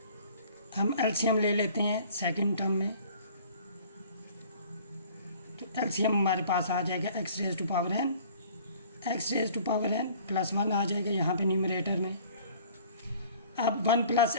हम एलसीएम ले लेते हैं सेकंड टर्म में, तो एलसीएम हमारे पास आ जाएगा X raise to power n, x raise to power n plus 1 आ जाएगा यहाँ पे न्यूमरेटर में। अब 1 plus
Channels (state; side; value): inverted; both; correlation -0.51